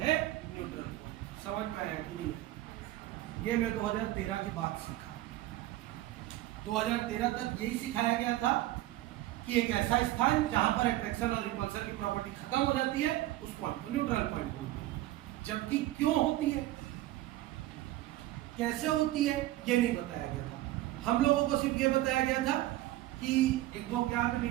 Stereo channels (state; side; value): quieter; left; 15.8 dB